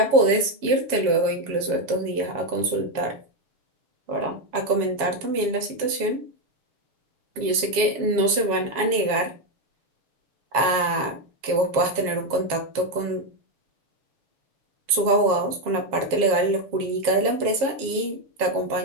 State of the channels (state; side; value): late; left; 7.2 ms